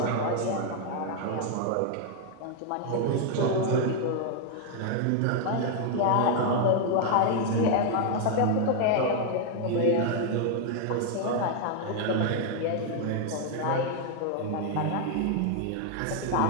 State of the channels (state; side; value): different; both; correlation 0.00